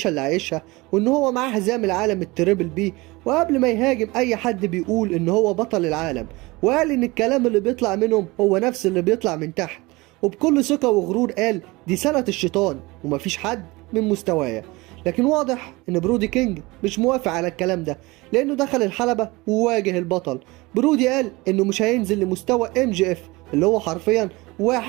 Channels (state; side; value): quieter; left; 22.7 dB